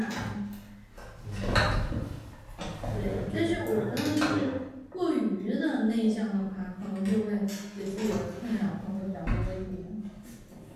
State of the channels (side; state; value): both; identical; correlation 1.00